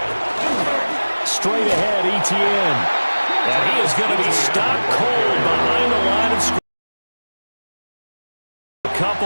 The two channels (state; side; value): inverted; both; correlation -1.00